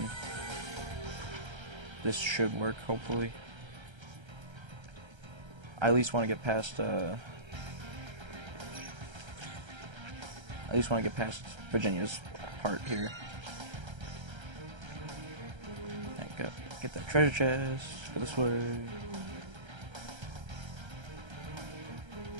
this should work, hopefully. I at least want to get past, Virginia's part here. Get that treasure chest, go this way.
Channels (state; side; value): late; left; 1.3 ms